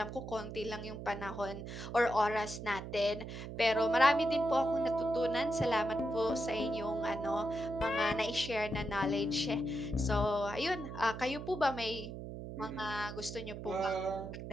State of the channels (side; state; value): right; noise; hum, 9 dB below the sound